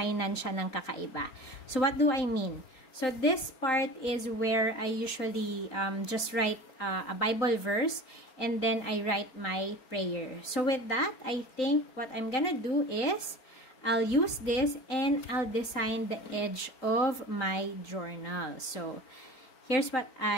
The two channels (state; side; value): late; right; 3.9 ms